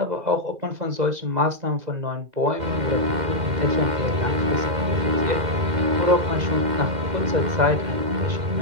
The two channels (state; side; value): late; left; 2.1 ms